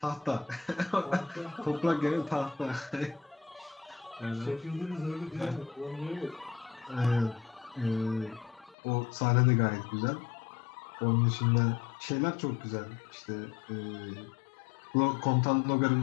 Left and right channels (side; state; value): right; drops out; at 8.8 s